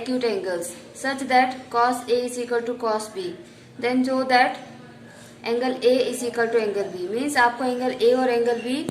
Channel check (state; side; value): identical; both; correlation 1.00